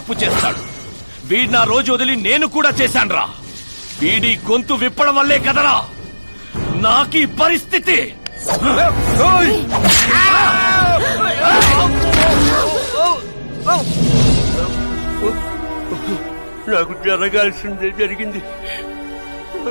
చేస్తాడు. వీడి నా రోజు వదిలి నేను కూడా చేశాన్రా. వీడి గొంతు విప్పడం వల్లే కదరా నాకీ పరిస్థితి. నాకు జరగాల్సిందే జరిగింది.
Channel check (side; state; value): both; inverted; correlation -1.00